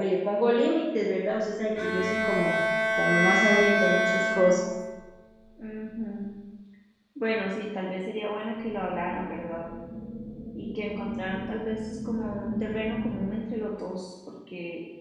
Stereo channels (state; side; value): identical; both; correlation 1.00